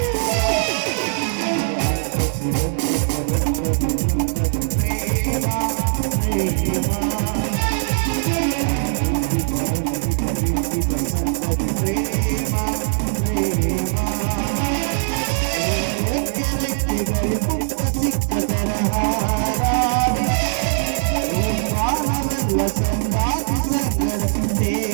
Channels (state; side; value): silent; left; digital silence